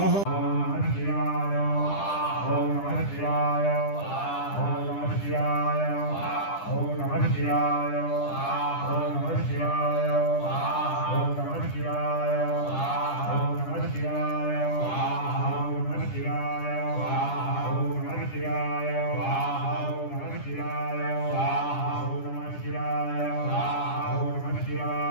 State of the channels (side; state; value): right; late; 10 ms